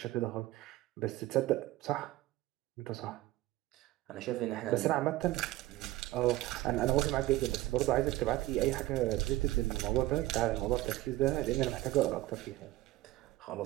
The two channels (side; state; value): left; quieter; 17.2 dB